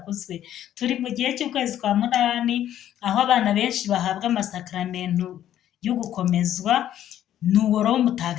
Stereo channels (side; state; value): right; quieter; 11.5 dB